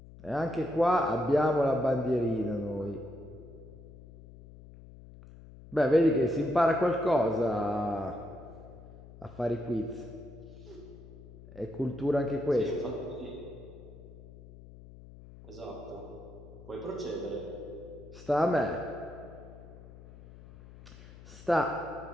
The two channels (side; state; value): left; noise; hum, 18 dB below the sound